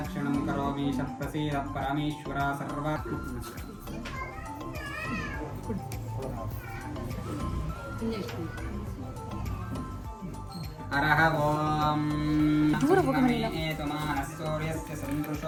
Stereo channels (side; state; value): both; identical; correlation 1.00